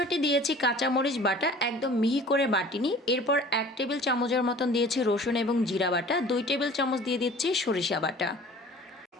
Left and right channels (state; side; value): normal; both; correlation 0.46